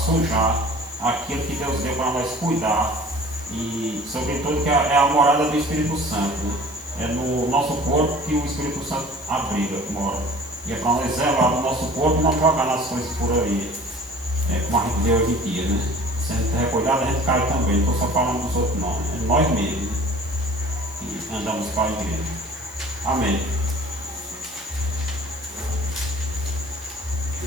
aquilo que Deus deu para nós cuidar. E sobretudo que é a morada do Espírito Santo, né? É no nosso corpo que o Espírito Santo abriga, mora. E é para nós zelar no nosso corpo e não jogar nas coisas por aí, como a gente vê hoje em dia, né? Se a gente recuidado, a gente cai também. Não estou só falando dos outros, não. É nós mesmos, né? Que andamos para a igreja. Amém.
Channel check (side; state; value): both; normal; correlation 0.46